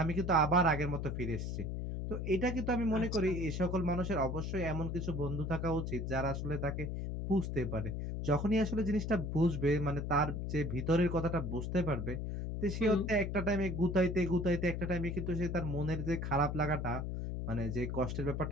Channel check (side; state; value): left; noise; hum, 3 dB below the sound